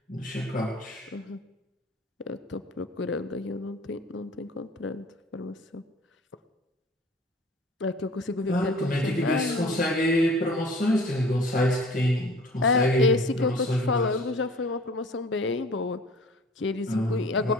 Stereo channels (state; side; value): normal; both; correlation 0.47